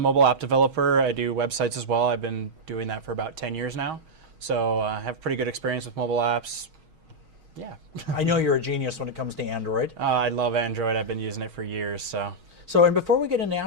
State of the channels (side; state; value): left; late; 6.3 ms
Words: app developer. I do websites as well. I've been doing that for about 10 years now. So I have pretty good experience with mobile apps. Yeah. I know you're a genius when it comes to Android. I love Android. I've been using it for years. So, and before we get into